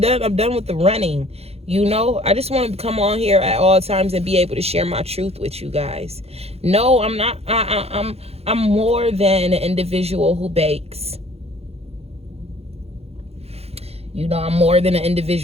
done with the running. You know, I just want to come on here at all times and be able to share my truth with you guys. No, I'm not. I'm more than an individual who bakes. You know, I'm more than an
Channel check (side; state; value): left; late; 0.29 ms